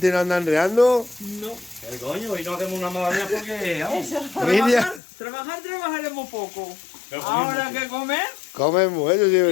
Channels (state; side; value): drops out; right; at 5.0 s